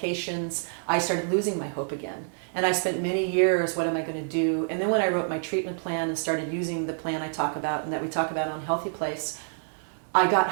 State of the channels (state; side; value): silent; left; digital silence